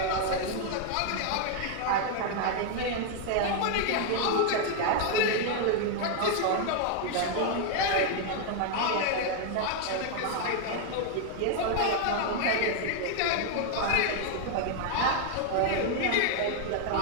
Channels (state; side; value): different; both; correlation 0.00